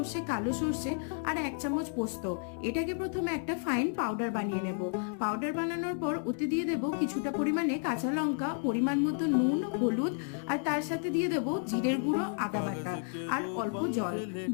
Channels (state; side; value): silent; right; 57 dB below the other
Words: কালো সর্ষে আর 1 চামচ পোস্ত। এটাকে প্রথমে একটা ফাইন পাউডার বানিয়ে নেব। পাউডার বানানোর পর ওতে দিয়ে দেব কিছুটা পরিমাণে কাঁচা লঙ্কা, পরিমাণ মতো নুন, হলুদ আর তার সাথে দিয়ে দেব জিরের গুঁড়ো, আদা বাটা আর অল্প জল।